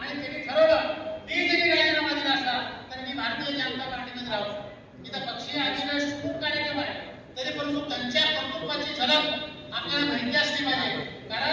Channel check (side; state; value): both; identical; correlation 1.00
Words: त्यांनी ठरवलं मी जरी राजीनामा दिला असला तर मी भारतीय जनता पार्टीमध्ये राहू. इथं पक्षीय अधिवेश खूप कार्यक्रम आहे, तरी परंतु त्यांच्या कर्तृत्वाची झलक आपल्याला माहिती असली पाहिजे.